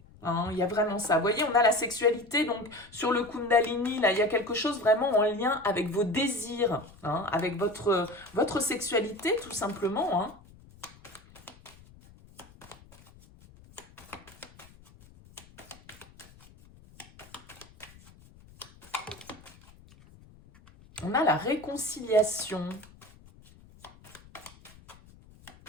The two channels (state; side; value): noise; left; rumble, 24 dB below the sound